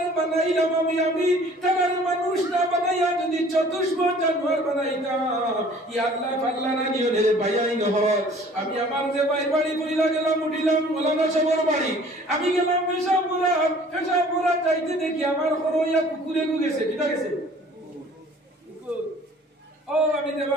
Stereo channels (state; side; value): normal; both; correlation 0.51